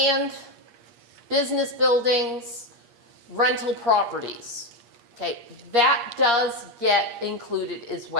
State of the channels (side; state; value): left; late; 8.5 ms